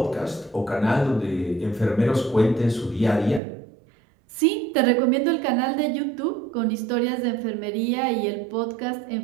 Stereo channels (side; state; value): left; drops out; at 3.4 s